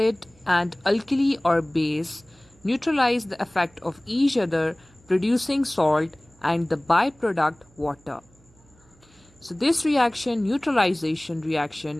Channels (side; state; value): right; noise; hum, 30 dB below the sound